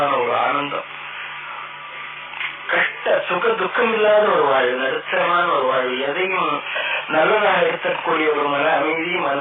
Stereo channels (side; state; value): both; identical; correlation 1.00